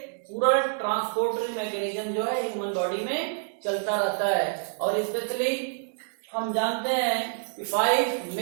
पूरा ट्रांसपोर्टरी मैकेनिज्म जो है ह्यूमन बॉडी में चलता रहता है। और स्पेशली हम जानते हैं कि 5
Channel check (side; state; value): left; silent; digital silence